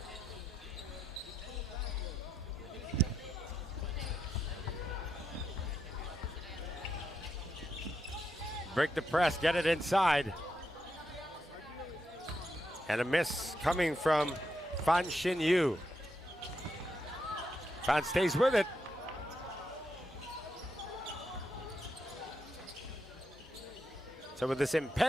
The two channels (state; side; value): normal; both; correlation 0.83